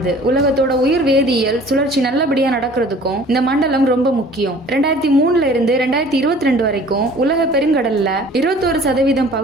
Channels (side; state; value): both; normal; correlation 0.49